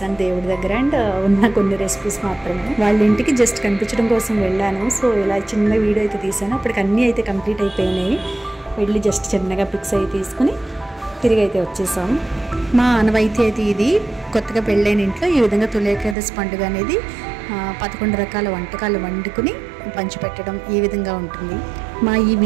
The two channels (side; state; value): left; drops out; at 16.2 s